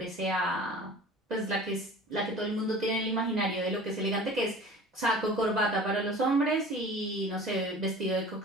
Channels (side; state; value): both; normal; correlation 0.42